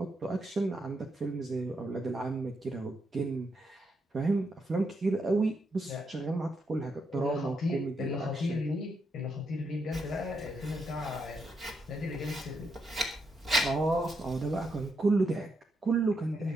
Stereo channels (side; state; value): both; normal; correlation 0.81